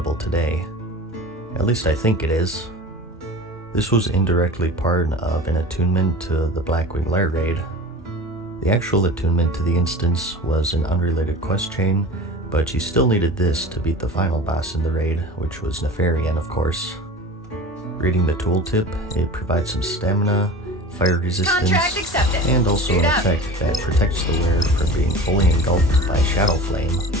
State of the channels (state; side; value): normal; both; correlation 0.36